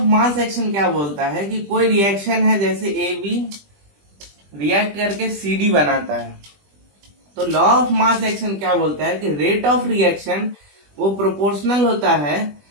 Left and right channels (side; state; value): left; late; 20 ms